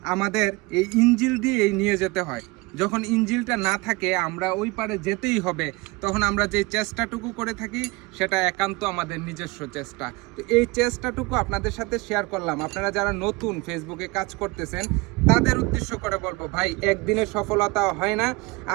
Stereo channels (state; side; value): quieter; left; 24.5 dB